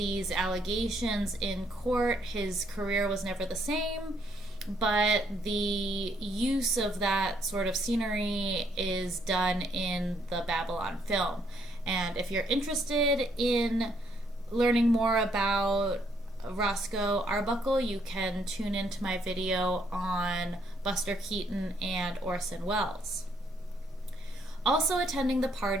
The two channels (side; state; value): both; normal; correlation 0.70